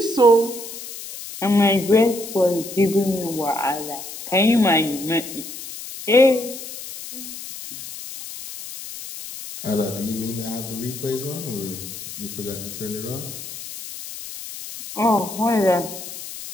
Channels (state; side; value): noise; left; hiss, 11 dB below the sound